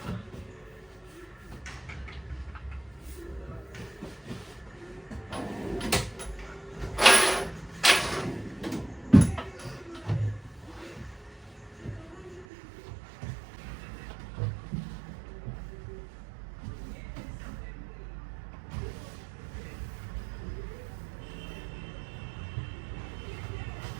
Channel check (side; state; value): left; drops out; at 12.5 s